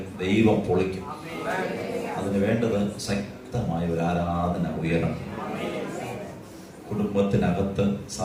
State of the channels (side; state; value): both; identical; correlation 1.00